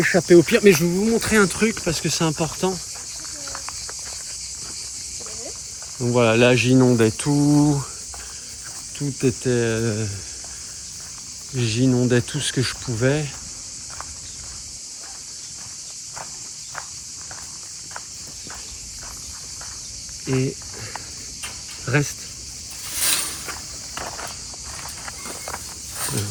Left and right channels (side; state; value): both; identical; correlation 1.00